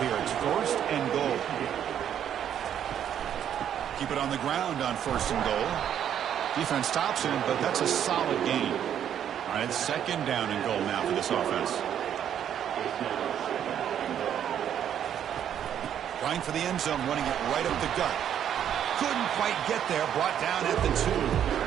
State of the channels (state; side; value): quieter; left; 9.6 dB